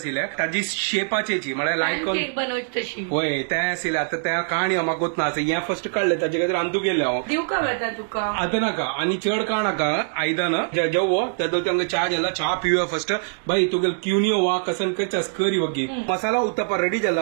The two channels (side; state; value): left; silent; digital silence